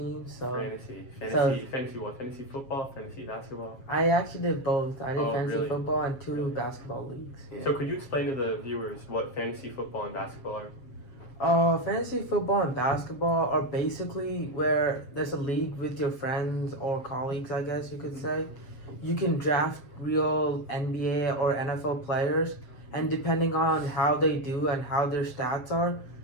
so Fantasy what? Fantasy football, fantasy basketball. I actually did both. I did Oh, fantasy really? football and two Really? basketball leagues. Yeah. So could you explain to the viewers what fantasy football and basketball are? Fantasy football and basketball are basically where there's a league with your friends or colleagues, I guess you could say. You can draft real NBA or NFL players, and depending on how they do and how their stats are,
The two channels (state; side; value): late; right; 7.4 ms